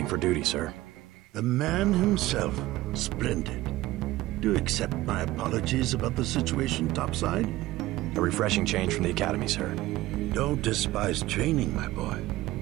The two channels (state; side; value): quieter; left; 17.3 dB